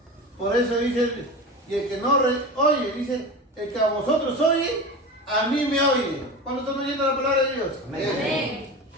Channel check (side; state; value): both; normal; correlation 0.28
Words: Por eso dice, y el que no oye, dice, el que a vosotros oye, a mí me oye. ¿Cuándo están oyendo la palabra de Dios? Amén.